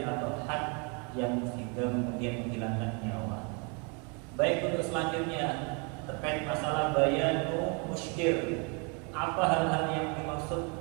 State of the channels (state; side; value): quieter; left; 34.4 dB